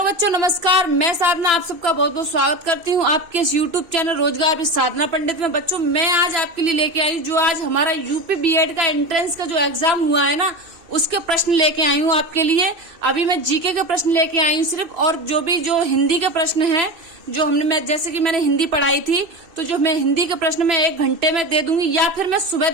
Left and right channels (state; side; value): late; left; 2.6 ms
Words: बच्चों, नमस्कार। मैं साधना आप सबका बहुत बहुत स्वागत करती हूँ आपके इस यूट्यूब चैनल रोजगार विद साधना पंडित में। बच्चों, मैं आज आपके लिए लेके आई जो आज हमारा यूपी बीएड का एंट्रेंस का जो एग्जाम हुआ है ना, उसके प्रश्न लेके आई हूँ आपके लिए। अभी मैं जीके के प्रश्न लेके आई हूँ सिर्फ, और जो हिंदी के प्रश्न है जो मैं जैसे कि मैंने हिंदी पढ़ाई थी, तो जो मैं हिंदी के प्रश्न में 1 घंटे में दे दूंगी या फिर मैं सुबह